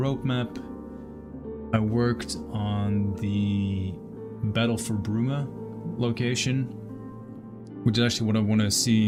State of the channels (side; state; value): both; identical; correlation 1.00